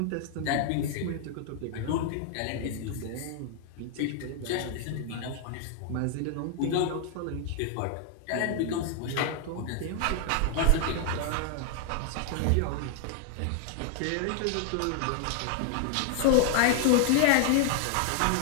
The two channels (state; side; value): different; both; correlation 0.00